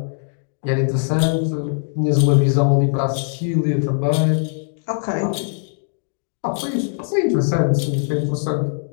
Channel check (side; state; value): right; silent; digital silence